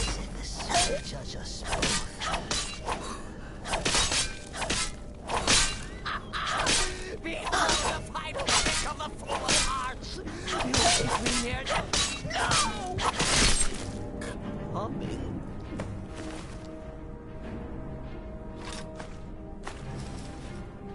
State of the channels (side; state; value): both; identical; correlation 1.00